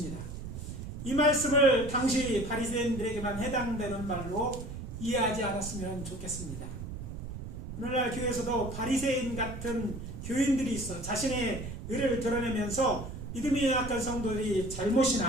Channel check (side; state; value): right; noise; rumble, 8 dB below the sound